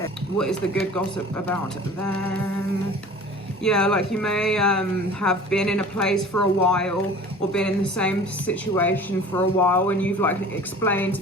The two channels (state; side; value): normal; both; correlation 0.43